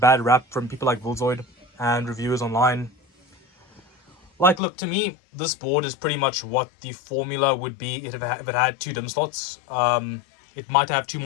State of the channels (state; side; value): drops out; right; at 4.6 s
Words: rap from people like Buildzoid and reviewers online. Like, look, to me, this board is pretty much what the formula would be if it had 2 DIMM slots. It might have 2